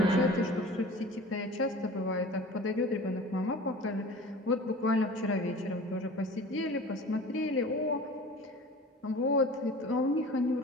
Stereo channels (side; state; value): both; normal; correlation 0.40